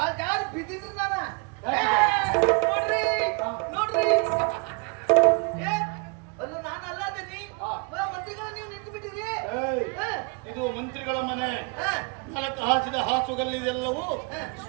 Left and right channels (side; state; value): left; quieter; 32.4 dB